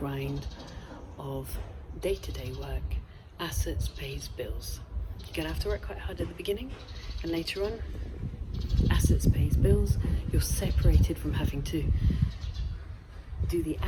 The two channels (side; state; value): both; identical; correlation 1.00